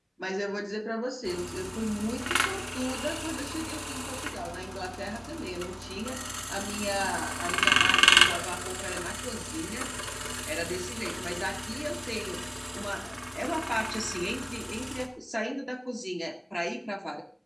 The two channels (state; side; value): identical; both; correlation 1.00